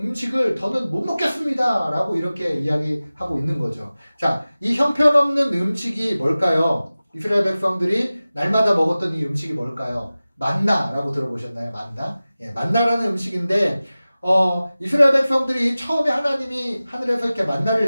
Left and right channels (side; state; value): both; inverted; correlation -0.97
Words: 음식을 더는 못 먹겠습니다 라고 이렇게 이야기하고 있는 거죠. 자, 이 형편없는 음식이 뭘까요? 이스라엘 백성들이 날마다 먹었던 이 음식이 뭘까요? 만나라고 들어보셨나요? 만나? 예, 만나라는 음식인데, 이스라엘 백성들이 처음에 하나님이 하늘에서 이렇게 만나를